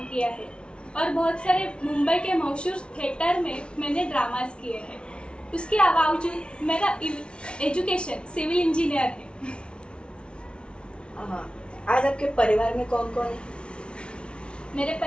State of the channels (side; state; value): right; late; 0.058 ms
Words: किया है और बहुत सारे मुंबई के मशहूर थिएटर में मैंने ड्रामास किए हैं। उसके बावजूद मेरा एजुकेशन सिविल इंजीनियर है। हाँ, आज आपके परिवार में कौन कौन है? मेरे